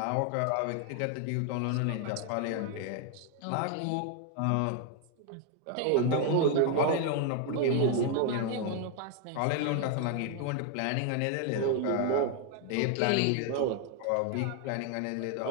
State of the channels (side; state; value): both; different; correlation 0.00